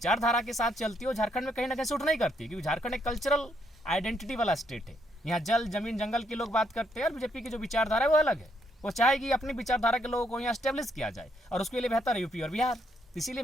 के साथ चलती है वो झारखंड में कहीं ना कहीं सूट नहीं करती, क्योंकि झारखंड एक कल्चरल आइडेंटिटी वाला स्टेट है। यहाँ जल जमीन जंगल के लोग बात करते हैं और बीजेपी की जो विचारधारा है वो अलग है। वो चाहेगी अपनी विचारधारा के लोगों को यहाँ स्टेब्लिश किया जाए और उसके लिए बेहतर है यूपी और बिहार। इसीलिए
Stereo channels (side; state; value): both; normal; correlation 0.74